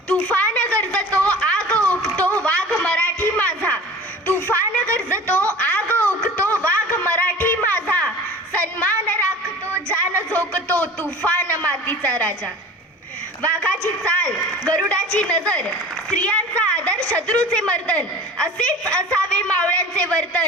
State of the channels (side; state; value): both; normal; correlation 0.40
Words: तुफान गरजतो आग ओकतो वाघ मराठी माझा, तुफान गरजतो आग ओकतो वाघ मराठी माझा, सन्मान राखतो जान झोकतो तुफान मातीचा राजा. वाघाची चाल गरुडाची नजर, स्त्रियांचा आदर शत्रूचे मर्दन, असेच असावे मावळ्यांचे